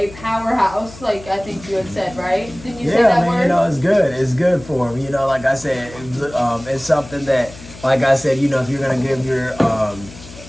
powerhouse. Like I think you had said, right? Didn't you say Yeah, that man, word? you know, it's good. It's good for them. You know, like I said, it's something that, like I said, you know, if you're gonna give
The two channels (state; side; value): noise; left; hum, 17 dB below the sound